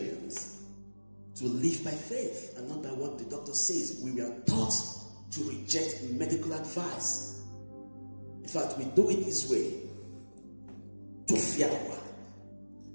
to live by faith and not by what the doctor says. We were taught to reject medical advice. In fact, we do it this way. To fear,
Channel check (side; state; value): both; inverted; correlation -1.00